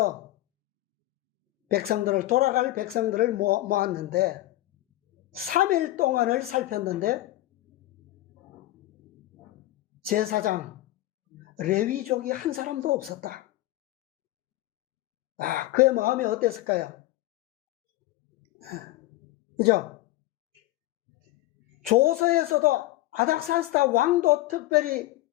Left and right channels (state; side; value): quieter; right; 16.7 dB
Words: 돌아갈 백성들을 모았는데 3일 동안을 살폈는데 제사장 레위족이 한 사람도 없었다. 그의 마음이 어땠을까요? 그죠? 조서에서도 아닥사스다 왕도 특별히